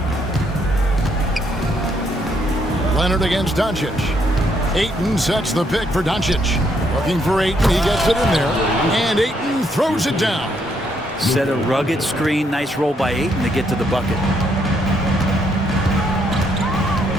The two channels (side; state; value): both; normal; correlation 0.73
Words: Leonard against Doncic. Ayton sets the pick for Doncic. Looking for Ayton. He gets it in there. And Ayton throws it down. Set a rugged screen. Nice roll by Ayton to get to the bucket.